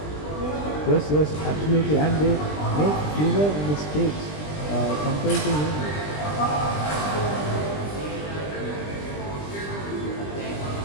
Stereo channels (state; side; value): late; right; 20 ms